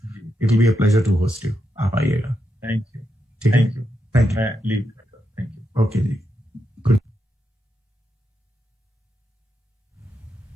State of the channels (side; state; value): both; normal; correlation 0.84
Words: it will be a pleasure to host you. आप आइएगा। Thank you. ठीक है, थैंक यू। मैं लीव करता हूं। Thank you. ओके जी।